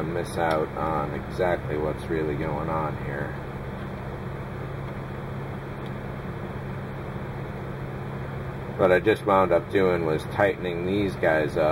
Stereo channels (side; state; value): both; identical; correlation 1.00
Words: miss out on exactly what's really going on here. What I just wound up doing was tightening these guys